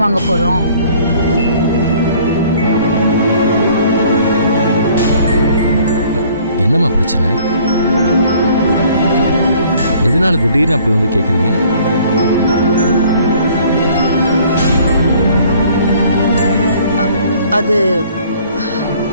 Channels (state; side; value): inverted; both; correlation -0.56